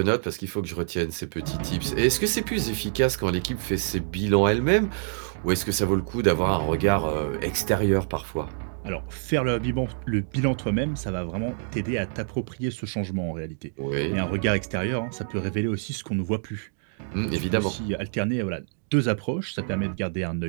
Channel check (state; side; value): silent; left; digital silence